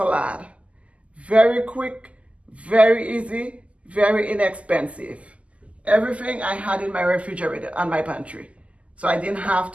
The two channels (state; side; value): late; left; 0.064 ms